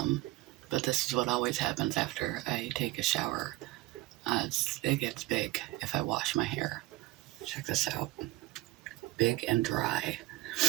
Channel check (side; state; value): left; quieter; 19.2 dB